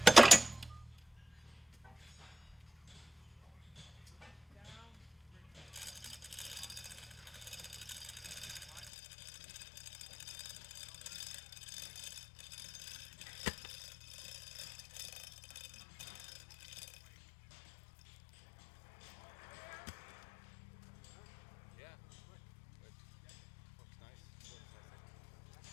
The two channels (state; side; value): drops out; right; at 8.9 s